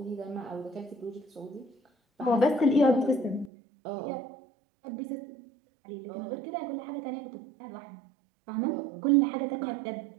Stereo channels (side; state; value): left; drops out; at 3.5 s